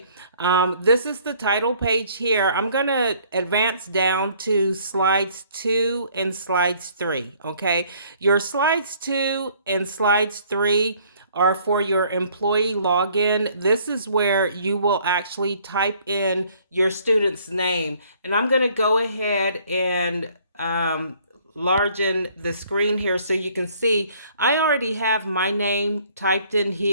This is the title page here. I'm going to advance down to slides 2 and slides 3. Okay. Your slides 2 and slides 3 are for your employee login. This is where you will actually type in your student's name. And I'm going to go ahead and largen the screen here so you can see I already have my name typed in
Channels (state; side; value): inverted; both; correlation -0.60